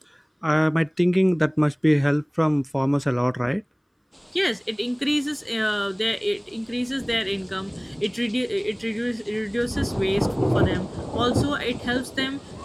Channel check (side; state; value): both; identical; correlation 1.00